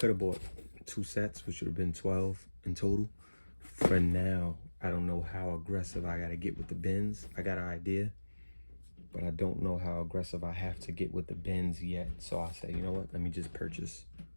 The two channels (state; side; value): inverted; both; correlation -1.00